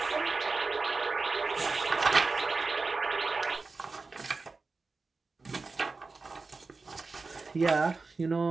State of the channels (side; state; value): left; quieter; 4.0 dB